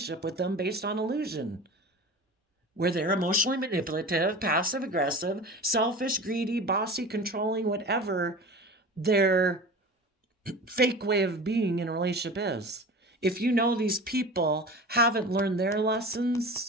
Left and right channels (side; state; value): both; normal; correlation 0.34